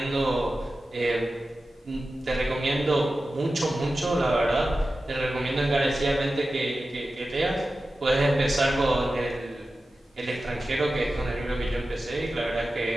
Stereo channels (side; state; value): both; normal; correlation 0.94